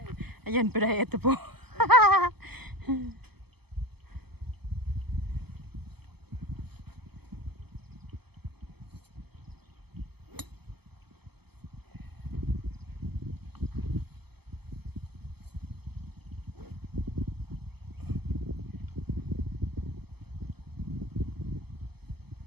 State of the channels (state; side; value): late; left; 0.97 ms